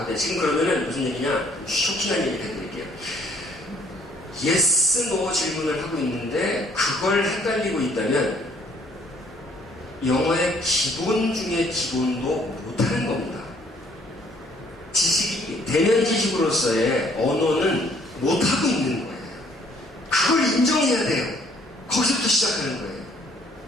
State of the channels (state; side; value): normal; both; correlation 0.62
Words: 지금 그러면은 무슨 얘기냐? 쇼킹한 얘기를 해드릴게요. yes, no 질문을 하고 있는데 그걸 헷갈리고 있다면 영어의 기본 중에 기본도 못하는 겁니다. 지식이, 대면 지식으로서의 언어는 못하고 있는 거예요. 그걸 인정해야 돼요. 거기서부터 시작하는 거예요.